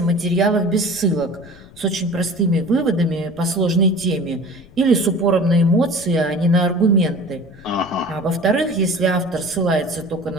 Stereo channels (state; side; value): noise; left; rumble, 23 dB below the sound